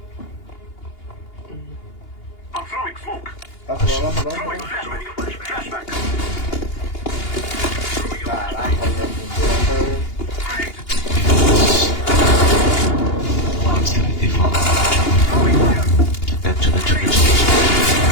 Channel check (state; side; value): late; right; 2.8 ms